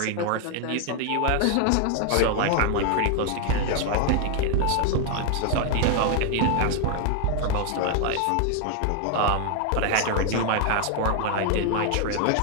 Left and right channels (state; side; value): different; both; correlation 0.01